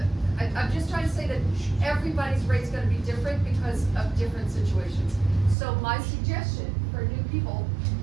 I'm just trying to say that everybody's rate's gonna be different because of different situations. So my suggestion for new people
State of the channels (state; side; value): drops out; left; at 5.6 s